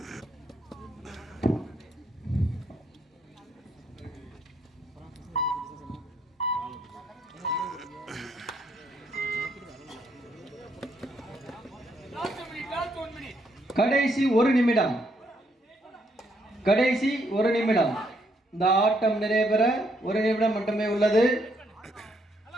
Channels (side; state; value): both; normal; correlation 0.73